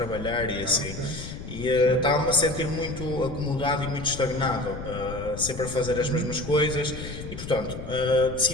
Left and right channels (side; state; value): left; noise; rumble, 10 dB below the sound